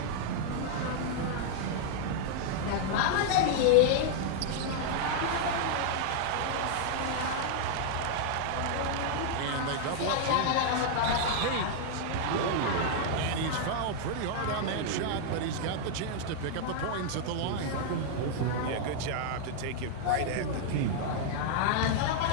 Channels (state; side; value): different; both; correlation -0.01